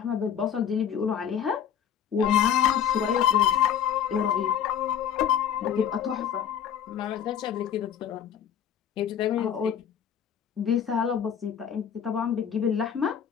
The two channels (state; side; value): quieter; right; 8.9 dB